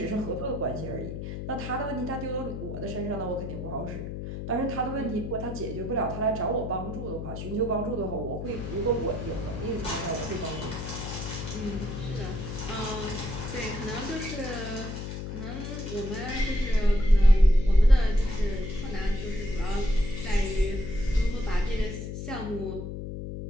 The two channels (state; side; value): noise; left; hum, 6 dB below the sound